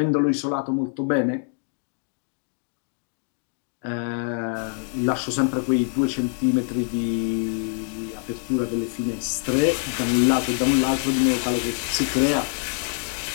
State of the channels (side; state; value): right; silent; 56 dB below the other